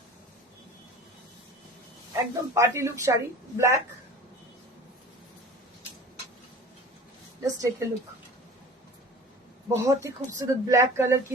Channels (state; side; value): normal; both; correlation 0.42